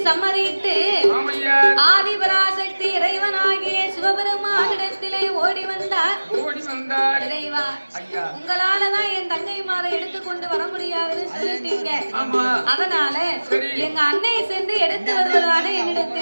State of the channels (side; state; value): both; inverted; correlation -1.00